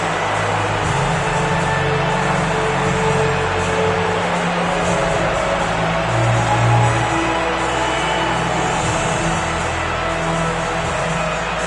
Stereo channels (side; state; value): both; identical; correlation 1.00